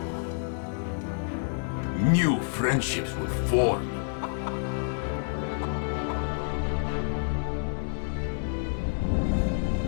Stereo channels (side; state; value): right; silent; 59 dB below the other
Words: new friendships will form.